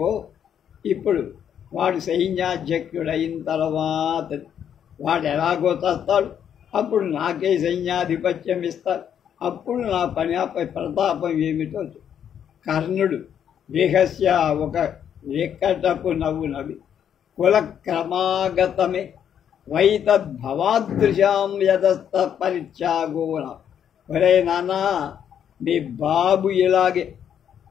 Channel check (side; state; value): right; quieter; 8.9 dB